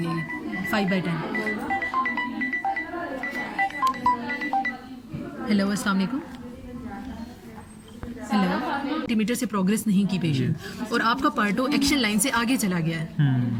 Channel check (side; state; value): both; identical; correlation 1.00